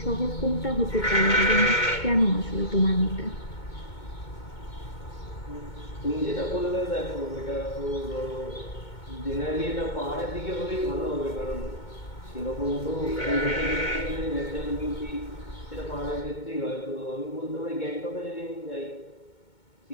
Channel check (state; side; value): late; right; 2.2 ms